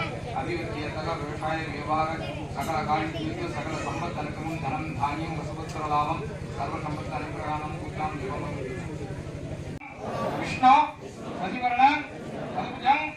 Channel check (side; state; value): both; identical; correlation 1.00